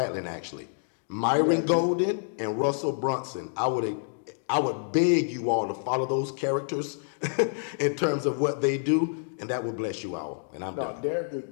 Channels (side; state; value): right; silent; digital silence